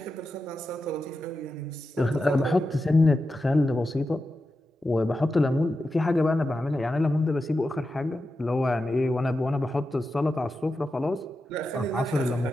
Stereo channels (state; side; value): normal; both; correlation 0.90